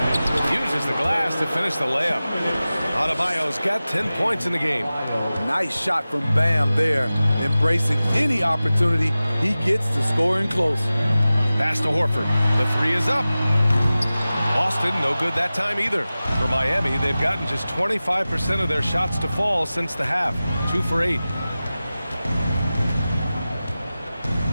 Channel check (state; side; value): inverted; both; correlation -0.96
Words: Uses the glass to finish the layup. Adebayo's got 10 points in the game. Nice shot from Bam there, embracing any opportunity he gets to scoring close. Pass to Horford. The 3 is up. Boston, no good that time either. For Miami, they've gotten just 25% of their shots to fall since the half. 2 for 8.